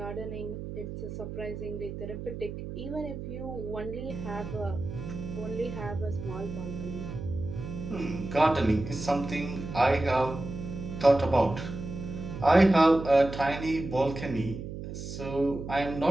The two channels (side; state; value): right; noise; hum, 8 dB below the sound